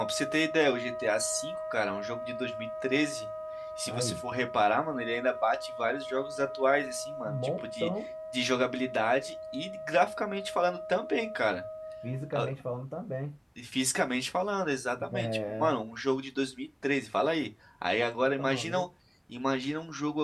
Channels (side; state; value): both; identical; correlation 1.00